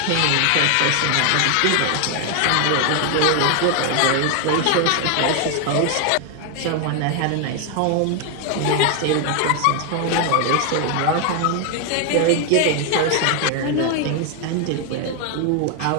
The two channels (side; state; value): both; different; correlation 0.01